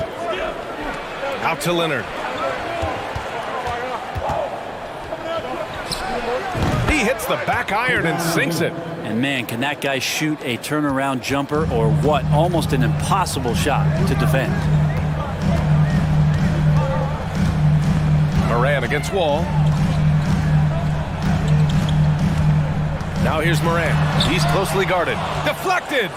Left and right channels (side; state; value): both; identical; correlation 1.00